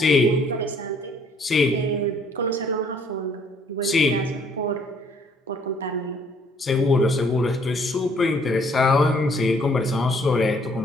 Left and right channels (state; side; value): normal; both; correlation 0.62